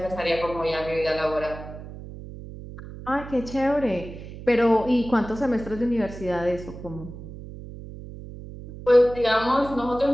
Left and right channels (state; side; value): noise; right; hum, 13 dB below the sound